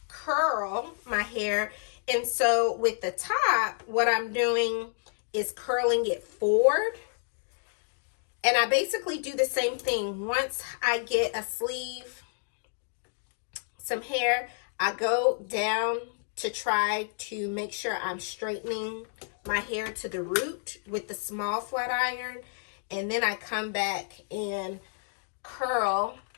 curl my hair, and so with the top, what I'm doing is curling it forward, and I basically do the same thing. Once I get a sleeve, some hair, I go down to try to make sure I'm straightening my hair to the root with the small flat iron, and then I come back and curl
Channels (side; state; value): right; silent; digital silence